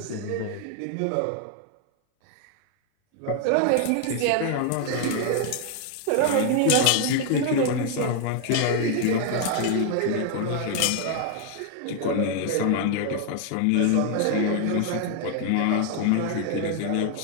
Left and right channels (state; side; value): different; both; correlation 0.00